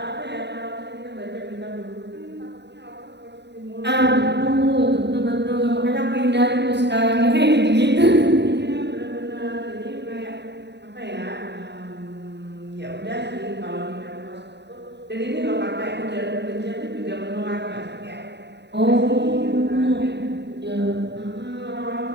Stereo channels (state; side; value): late; left; 0.50 ms